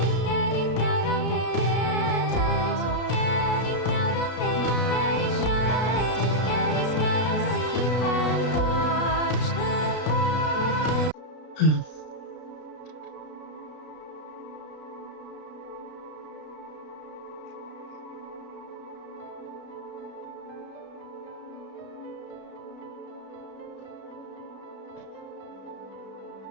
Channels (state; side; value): late; right; 32 ms